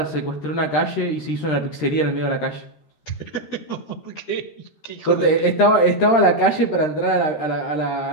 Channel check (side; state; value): right; late; 13 ms